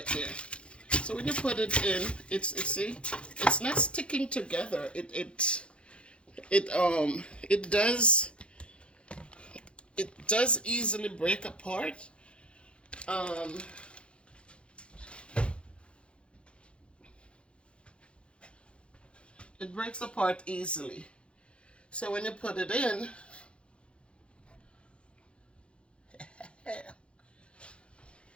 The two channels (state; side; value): late; right; 0.058 ms